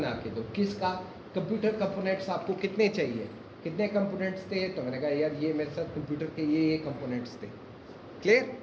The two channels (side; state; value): both; identical; correlation 1.00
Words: के दो, किसका, कंप्यूटर कंपोनेंट्स आपको कितने चाहिए, कितने कंपोनेंट्स थे, तो मैंने कहा यार ये मेरे साथ कंप्यूटर के ये कंपोनेंट्स थे, क्लियर।